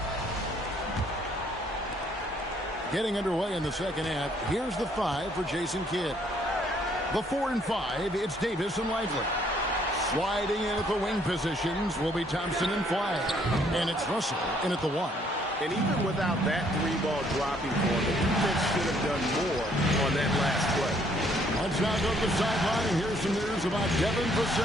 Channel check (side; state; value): both; normal; correlation 0.65